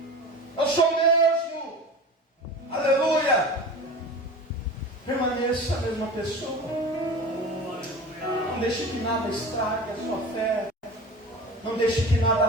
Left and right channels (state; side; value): normal; both; correlation 0.34